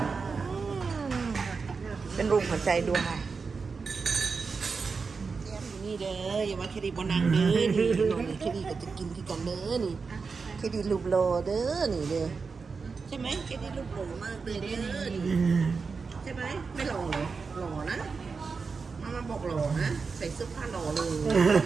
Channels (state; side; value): quieter; left; 4.9 dB